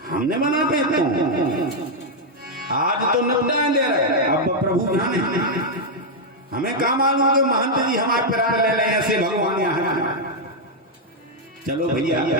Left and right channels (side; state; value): both; normal; correlation -0.02